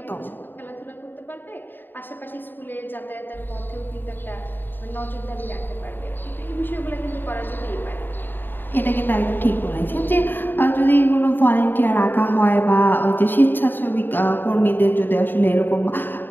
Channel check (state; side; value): late; right; 0.093 ms